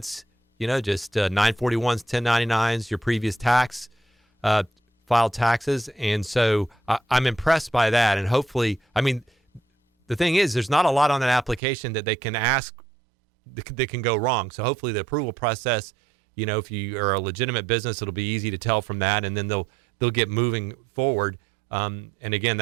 just 941s, 1099s, your previous filed taxes. And so I'm impressed by that. And hopefully, the thing is, there's not a lot on that application that they can ask that can go wrong. So hopefully the approval process, if you are a legitimate business, it'll be easy to tell from that. And then they'll get moving forward. And again,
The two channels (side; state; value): left; drops out; at 11.6 s